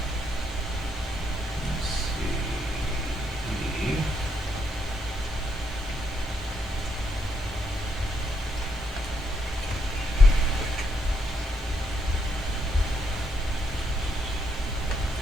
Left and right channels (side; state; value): both; normal; correlation 0.76